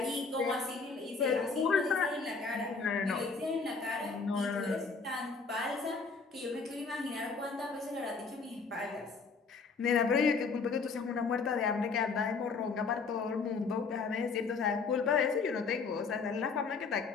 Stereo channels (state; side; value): quieter; right; 4.7 dB